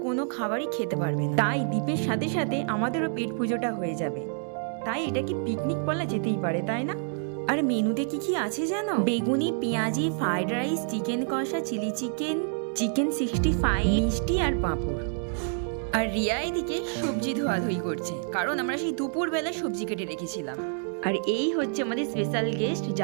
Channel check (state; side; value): silent; left; 60 dB below the other